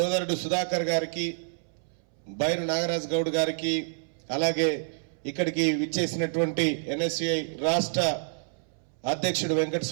సుధాకర్ గారికి, బైరు నాగరాజ్ గౌడ్ గారికి, అలాగే ఇక్కడికి విచ్చేసినటువంటి ఎన్ఎస్యుఐ రాష్ట్ర అధ్యక్షుడు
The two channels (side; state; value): left; silent; 59 dB below the other